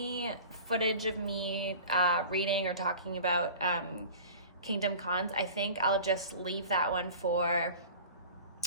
footage of me reading or talking about Kingdom Cons, I think I'll just leave that one for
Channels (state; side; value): inverted; both; correlation -0.40